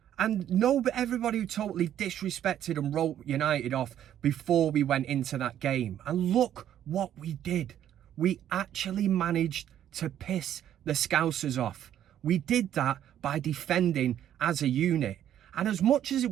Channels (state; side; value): quieter; left; 10.8 dB